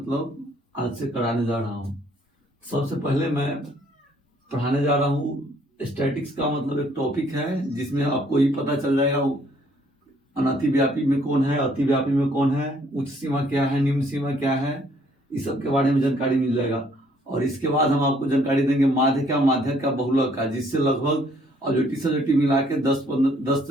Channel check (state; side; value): normal; both; correlation 0.64